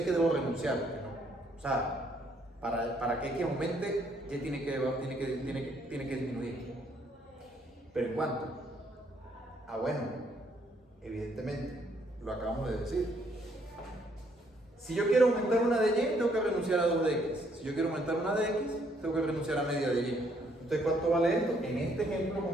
que debo renunciar. ¿No? O sea, para que X aumente, Y tiene que disminuir. ¿Pero en cuánto? Ah, bueno, evidentemente, lo acabamos de decir. Si yo quiero aumentar una de Y, tengo que renunciar a 2 de X. Si yo quiero aumentar una de X, tengo que renunciar a media de Y. Entonces, ¿cuánto vale esto? En este ejemplo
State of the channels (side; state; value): both; normal; correlation 0.69